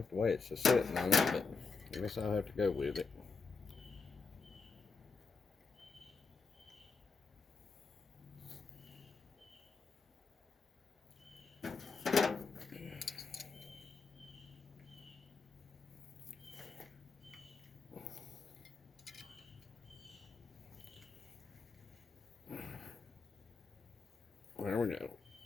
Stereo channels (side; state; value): right; quieter; 4.7 dB